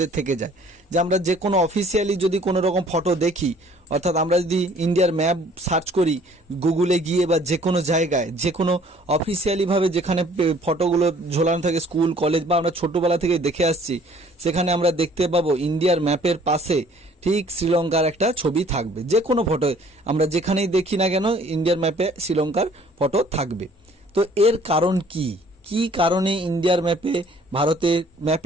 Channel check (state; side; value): normal; both; correlation 0.56